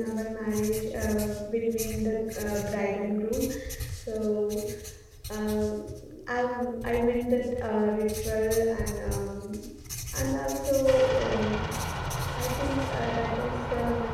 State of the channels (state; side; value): identical; both; correlation 1.00